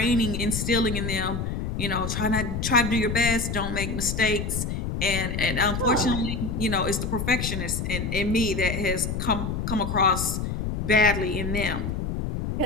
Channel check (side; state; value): left; noise; rumble, 3 dB below the sound